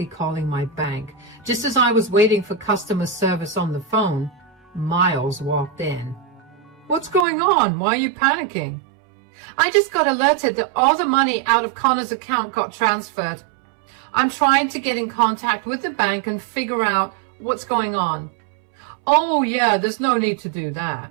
calling my bank. Just as I was waiting for customer service on the phone, Miles walked in. What's going on? Why are you panicking? I just got alerted that all the money out of Connor's account got transferred. I'm trying to get in contact with the bank and figure out what's going on. Oh yeah, there's no need to do that.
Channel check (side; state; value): left; drops out; at 7.2 s